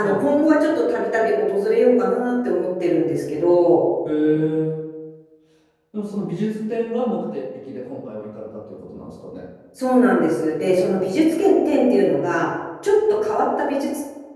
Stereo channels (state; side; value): identical; both; correlation 1.00